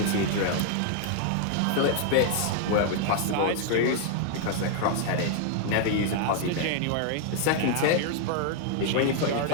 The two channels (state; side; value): different; both; correlation 0.00